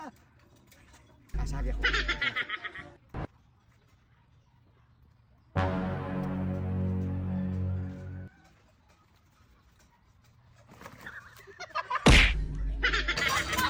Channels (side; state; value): both; identical; correlation 1.00